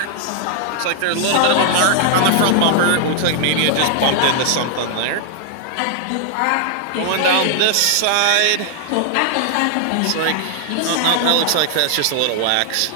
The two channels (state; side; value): different; both; correlation 0.00